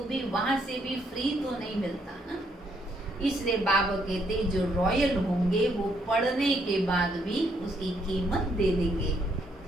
भी वहां से भी फ्री तो नहीं मिलता ना। इसलिए बाबा कहते जो रॉयल होंगे वो पढ़ने के बाद भी उसकी कीमत दे देंगे।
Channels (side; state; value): both; normal; correlation 0.73